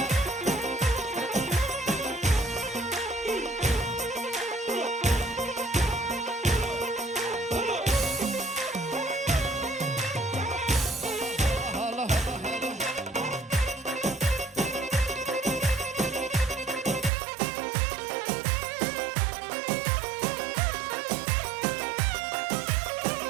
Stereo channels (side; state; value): left; drops out; at 17.1 s